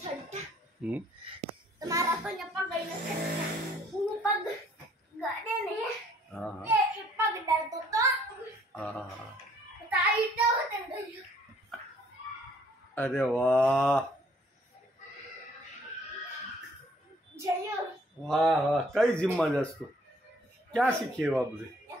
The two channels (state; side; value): normal; both; correlation 0.61